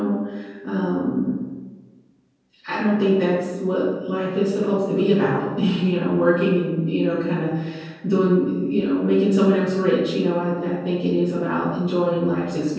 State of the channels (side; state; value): both; identical; correlation 1.00